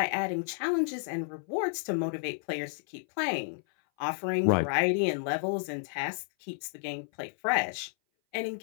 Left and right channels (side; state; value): right; silent; 57 dB below the other